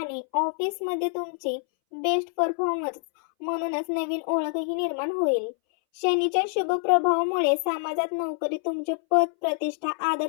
ऑफिसमध्ये तुमची बेस्ट परफॉर्मन्स म्हणूनच नवीन ओळखही निर्माण होईल. शनीच्या शुभ प्रभावामुळे समाजात नोकरी, तुमचे पद, प्रतिष्ठा,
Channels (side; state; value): right; silent; 61 dB below the other